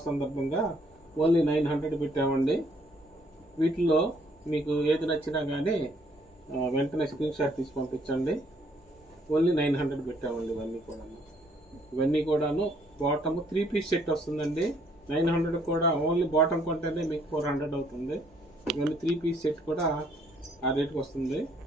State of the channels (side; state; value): both; normal; correlation 0.66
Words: సందర్భంగా ఓన్లీ 900 పెట్టామండి. వీటిలో మీకు ఏది నచ్చినా కానీ వెంటనే స్క్రీన్ షాట్ తీసి పంపించండి. ఓన్లీ 900 పెట్టామండి. ఇవన్నీ కూడాను బాటమ్ 3 పీస్ సెట్ వస్తుందండి. 900 కూడా ఓన్లీ బాటమ్ కొంటేనే మీకు 400 అవుతుంది. ఇవన్నీ 3 పీస్ సెట్ కూడా ఆ రేట్కి వస్తుంది.